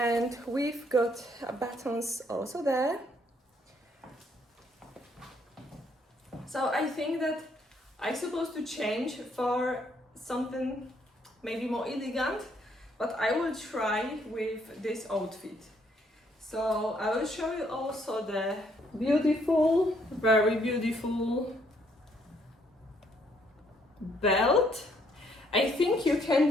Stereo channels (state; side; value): normal; both; correlation 0.69